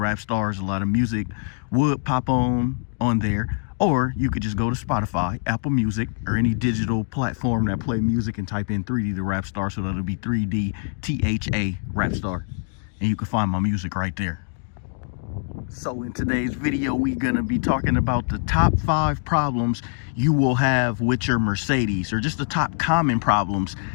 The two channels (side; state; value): right; silent; 63 dB below the other